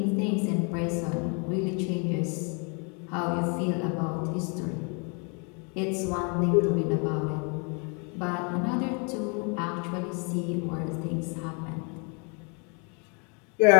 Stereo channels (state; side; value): quieter; right; 35.4 dB